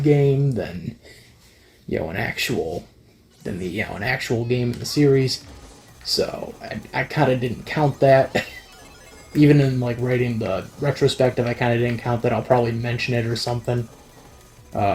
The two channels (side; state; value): both; identical; correlation 1.00